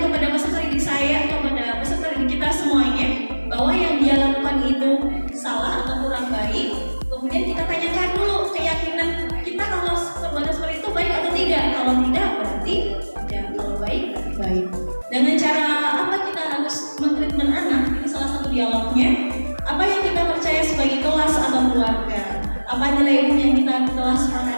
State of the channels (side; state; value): both; inverted; correlation -1.00